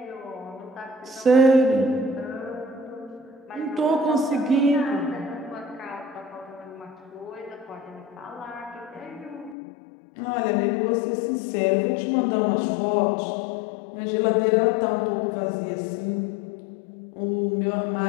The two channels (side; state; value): right; drops out; at 9.6 s